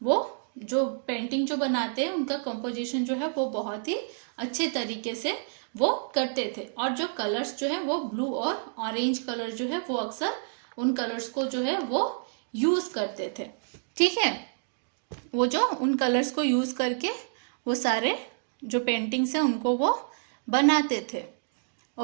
वो जो पेंटिंग जो बनाते हैं उनका कंपोजिशन जो है वो बहुत ही अच्छे तरीके से वो करते थे। और जो कलर्स जो है वो ब्लू और ऑरेंज कलर जो है वो अक्सर उन कलर्स को जो है वो यूज करते थे। ठीक है, वो जो उन कलर्स को यूज करके वो सारे जो पेंटिंग्स हैं उनको वो बनाते थे।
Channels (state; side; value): silent; left; digital silence